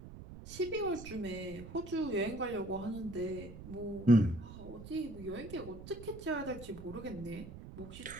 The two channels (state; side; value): noise; right; rumble, 13 dB below the sound